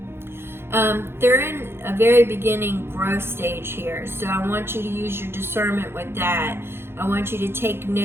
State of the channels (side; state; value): left; late; 0.11 ms